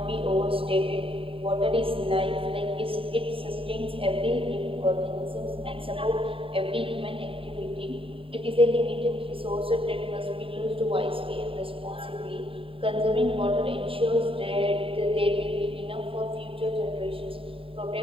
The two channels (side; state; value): left; late; 0.26 ms